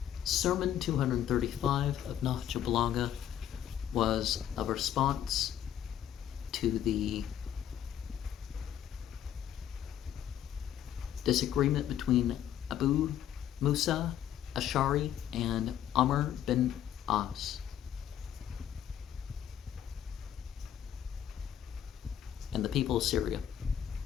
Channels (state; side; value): quieter; right; 10.5 dB